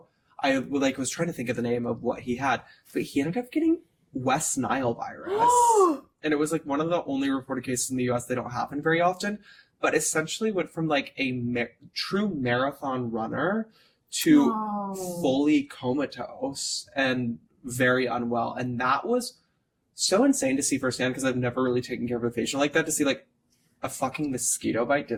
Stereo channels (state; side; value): identical; both; correlation 1.00